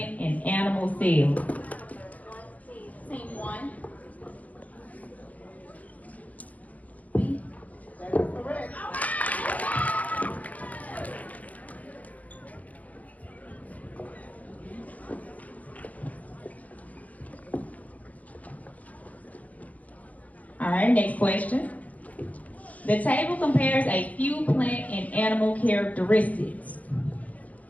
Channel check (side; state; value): right; late; 0.073 ms